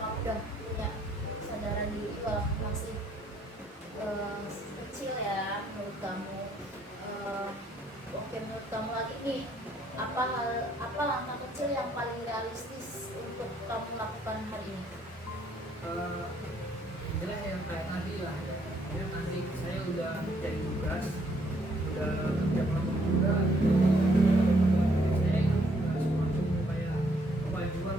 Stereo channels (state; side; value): normal; both; correlation 0.68